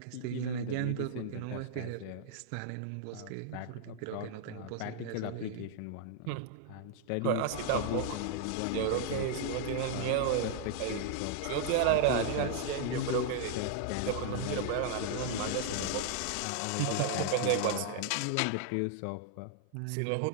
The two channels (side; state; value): both; different; correlation -0.01